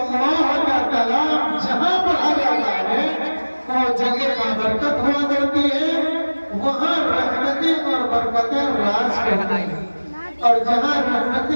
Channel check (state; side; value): inverted; both; correlation -1.00